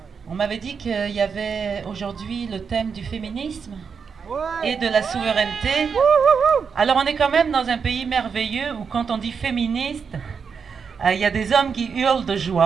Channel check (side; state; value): left; quieter; 6.2 dB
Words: On m'avait dit qu'il y avait aujourd'hui le thème du féminisme et de la souveraineté. Alors on est quand même dans un pays merveilleux où quand on dit féministe, il y a des hommes qui hurlent de